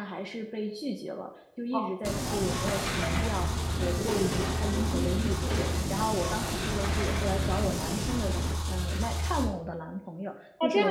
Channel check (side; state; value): both; identical; correlation 1.00